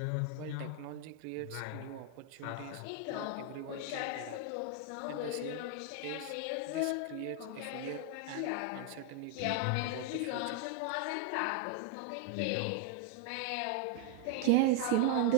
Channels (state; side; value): different; both; correlation 0.00